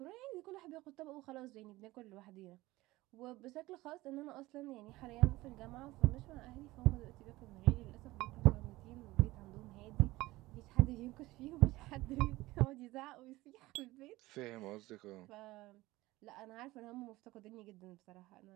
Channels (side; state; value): left; quieter; 18.9 dB